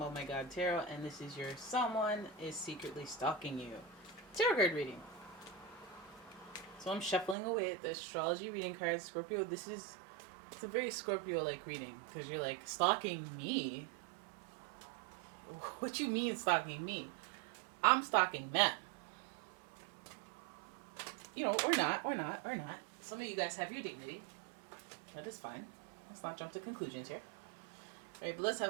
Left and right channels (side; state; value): left; drops out; at 7.4 s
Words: and this is your someone is secretly stalking you tarot card reading. So I'm shuffling away at the astrology reading cards. Scorpio, it's a very Scorpio-like reading because you're like, stalking me? What you mean stalking me? I'm stalking them. Or not. Some of you guys have your dignity. That is fine. Let's not jump to conclusions here. All right, but let's